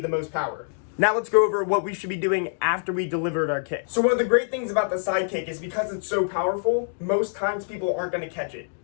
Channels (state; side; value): silent; right; digital silence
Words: the most power. Now let's go over what we should be doing after we delivered our kick. So one of the great things about the side kick is because it's so powerful, most times people aren't going to catch it.